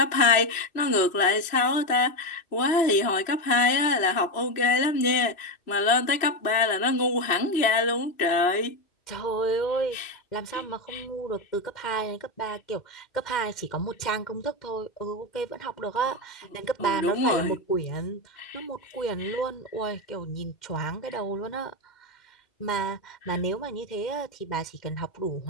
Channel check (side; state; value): right; late; 3.0 ms